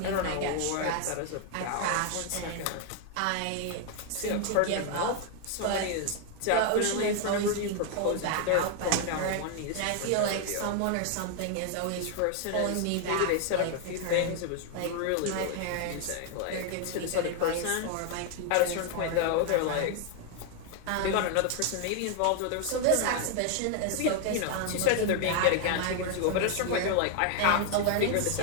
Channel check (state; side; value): different; both; correlation 0.00